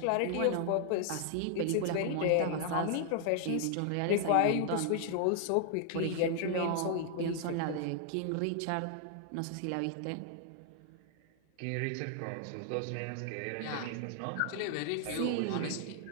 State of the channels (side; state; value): both; different; correlation 0.00